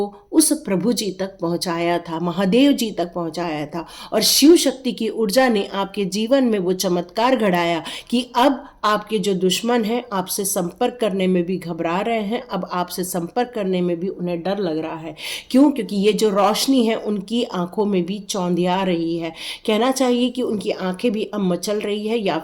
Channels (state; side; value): identical; both; correlation 1.00